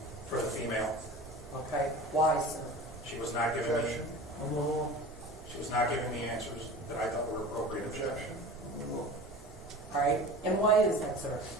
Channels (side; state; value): both; normal; correlation 0.36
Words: For the female. Okay. Why, sir? She was not giving me. Objection. She was not giving me answers that I thought were appropriate. Objection. All right. And why is that, sir?